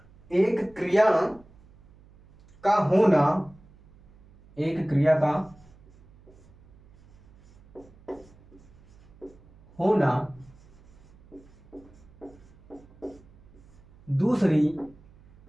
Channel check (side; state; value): right; noise; hum, 26 dB below the sound